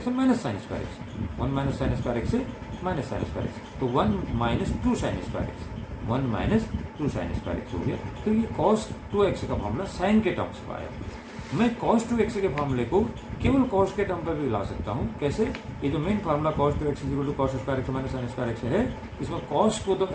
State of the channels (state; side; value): identical; both; correlation 1.00